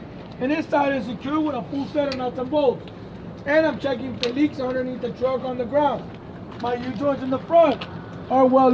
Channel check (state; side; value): identical; both; correlation 1.00